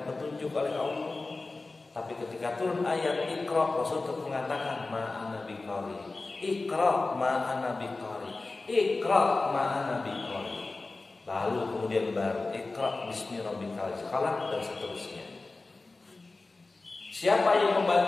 petunjuk oleh Allah. Tapi ketika turun ayat Iqra, Rasul tetap mengatakan ma'ana biqari, Iqra ma'ana biqari, Iqra ma'ana biqari. Lalu kemudian baru Iqra bismi rabbikal khalaq dan seterusnya. Siapa yang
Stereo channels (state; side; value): quieter; right; 3.4 dB